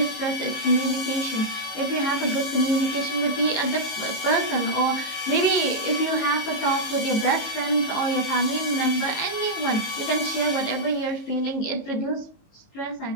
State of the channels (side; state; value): right; late; 19 ms